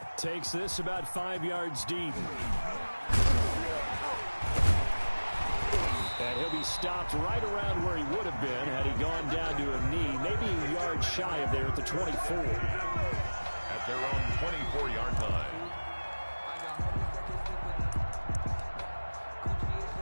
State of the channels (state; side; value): inverted; both; correlation -1.00